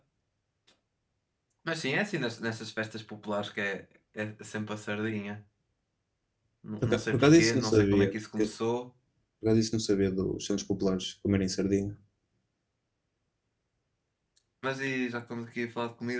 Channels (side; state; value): both; identical; correlation 1.00